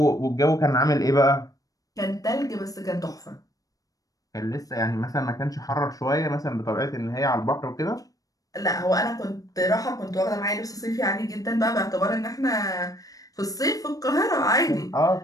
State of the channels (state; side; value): late; right; 0.17 ms